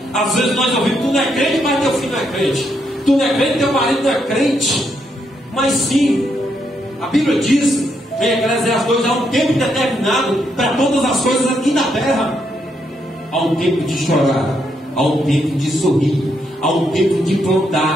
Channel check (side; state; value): both; normal; correlation 0.77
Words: Às vezes nós ouvimos: tu não é crente, mas teu filho não é crente. Tu não é crente, teu marido não é crente. Mas sim, a Bíblia diz em Eclesiastes 2: há um tempo determinado para todas as coisas aqui na terra. Há um tempo de chorar, há um tempo de sorrir, há um tempo de